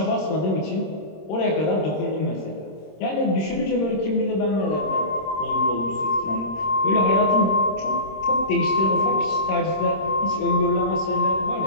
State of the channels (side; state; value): right; late; 26 ms